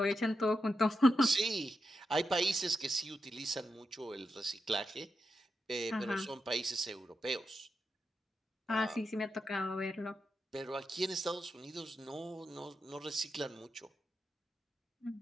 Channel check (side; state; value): both; normal; correlation 0.87